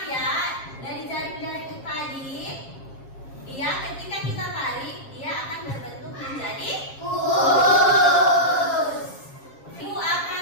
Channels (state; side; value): late; right; 7.4 ms